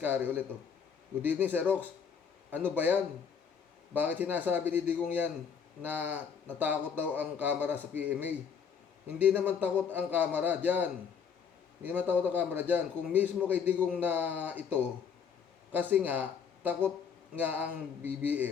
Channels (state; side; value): quieter; right; 6.8 dB